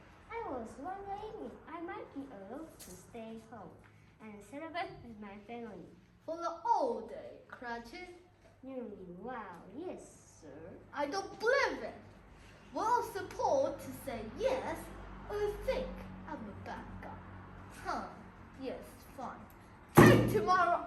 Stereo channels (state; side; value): identical; both; correlation 1.00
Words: I was wondering if I might be allowed to stay home and celebrate with my family. For the whole day, Cratchit? Wow, yes, sir. I don't believe it. Well, support to say yes, or you think I'm a bad guy? Huh, yes, fine. Take tomorrow